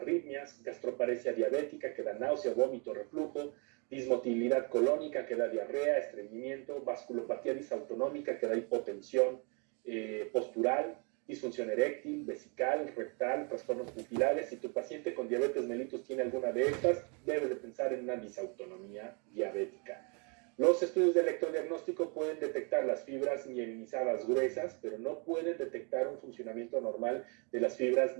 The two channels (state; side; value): quieter; left; 34.6 dB